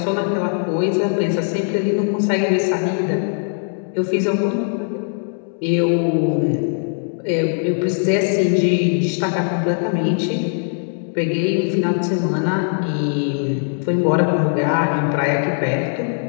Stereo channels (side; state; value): right; silent; 66 dB below the other